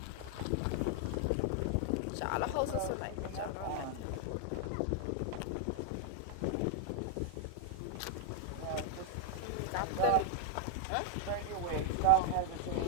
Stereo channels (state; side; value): different; both; correlation 0.00